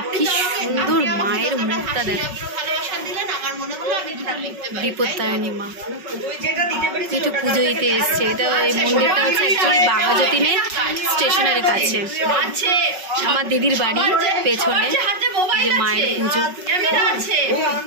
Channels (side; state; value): left; late; 5.4 ms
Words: কি সুন্দর মায়ের মুখটা, দেখো বিপত্তারিণী মা। একটু পুজো দিতে এসছে। এটা এই মন্দিরটা হচ্ছে অ্যাকচুয়ালি বাঘাযতীনে স্টেশনের কাছে। আমার দিদির বাড়ি পেছনে যে মায়ের পুজো